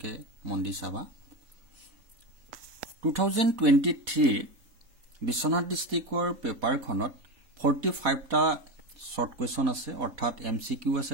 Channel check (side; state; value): left; late; 4.2 ms